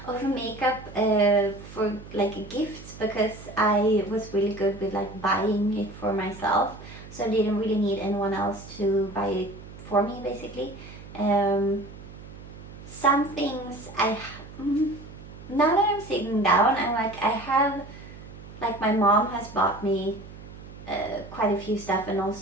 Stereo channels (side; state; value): right; noise; hum, 16 dB below the sound